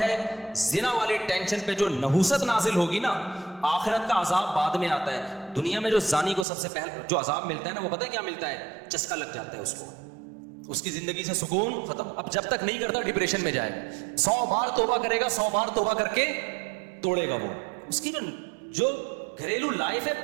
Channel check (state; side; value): drops out; left; at 6.5 s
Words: زنا والی ٹینشن پہ جو نحوست نازل ہوگی نا, آخرت کا عذاب بعد میں آتا ہے. دنیا میں جو زانی کو سب سے پہلے جو عذاب ملتا ہے نا, وہ پتہ ہے کیا ملتا ہے؟ چسکا لگ جاتا ہے اس کو, اس کی زندگی سے سکون ختم. اب جب تک نہیں کرتا ڈپریشن میں جائے, 100 بار توبہ کرے گا, 100 بار توبہ کر کے توڑے گا. وہ اس کی جو گھریلو لائف ہے